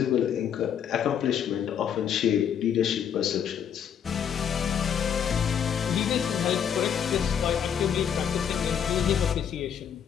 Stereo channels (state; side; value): quieter; right; 8.3 dB